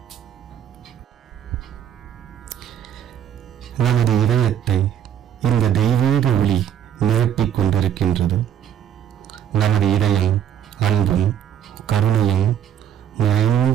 நமது இதயத்தை இந்த தெய்வீக ஒளி நிரப்பிக் கொண்டிருக்கின்றது. நமது இதயம் அன்பும் கருணையும்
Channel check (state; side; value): quieter; left; 9.7 dB